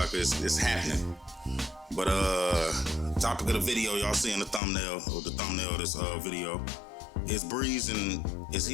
it's happening. But topic of the video, y'all seeing the thumbnail of this video, is Breeze, and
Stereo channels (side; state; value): right; drops out; at 4.6 s